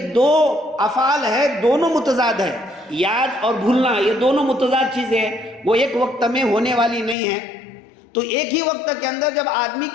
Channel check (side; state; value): right; drops out; at 7.2 s